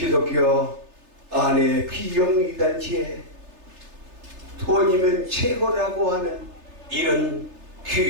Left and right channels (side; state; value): left; late; 3.3 ms